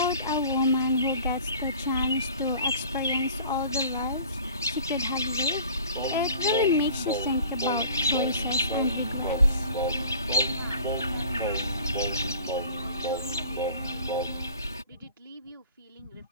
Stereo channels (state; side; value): inverted; both; correlation -0.47